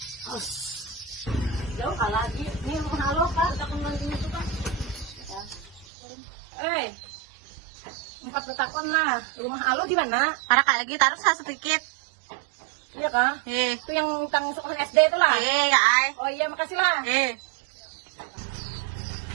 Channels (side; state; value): left; drops out; at 5.9 s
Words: Jauh kalah lagi. Ini rumah halo kan, udah kembali itu kan. Empat betakon lah. Rumah halo gimana? Para kak lagi taruh sedikit. Iya kah? Itu yang tentang sekolah SD itu lah. Kak Ai. Oh iya, makasih lah.